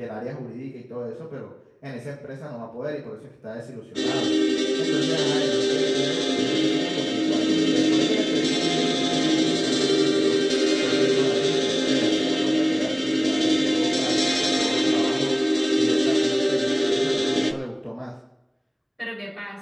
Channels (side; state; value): both; identical; correlation 1.00